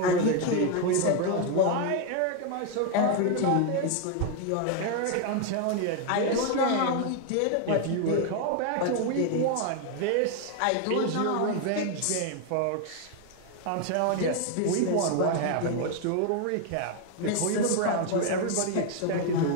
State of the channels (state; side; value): different; both; correlation 0.01